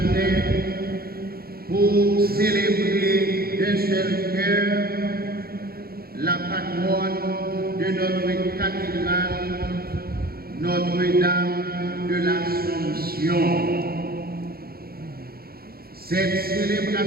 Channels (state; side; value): late; left; 0.44 ms